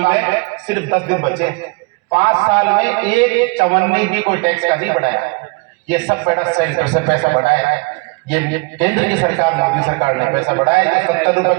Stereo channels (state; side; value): quieter; left; 29.1 dB